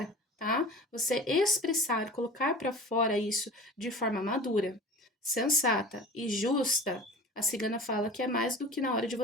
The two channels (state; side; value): normal; both; correlation 0.39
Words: tá? Você expressar, colocar para fora isso de forma madura, sensata e justa, a cigana fala que é mais do que na hora de